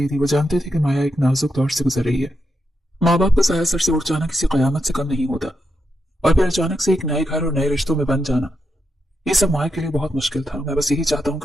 दी। वो जानते थे कि माया एक नाजुक दौर से गुजर रही है। माँ बाप का साया सर से उठ जाना किसी कयामत से कम नहीं होता, और फिर अचानक से एक नए घर और नए रिश्तों में बन जाना, ये सब माया के लिए बहुत मुश्किल था। मैं बस यही चाहता हूँ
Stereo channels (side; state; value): both; normal; correlation 0.84